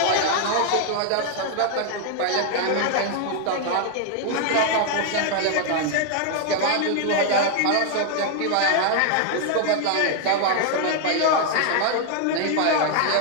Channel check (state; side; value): different; both; correlation 0.00